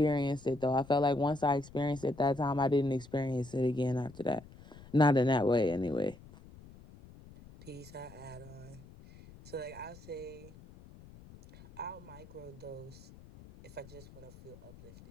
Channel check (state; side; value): noise; left; rumble, 20 dB below the sound